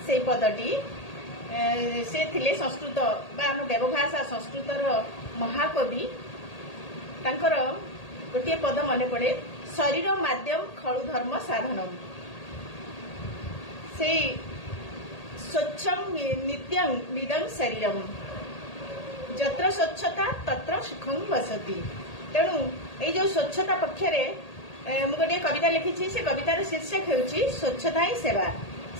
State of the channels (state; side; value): late; right; 1.8 ms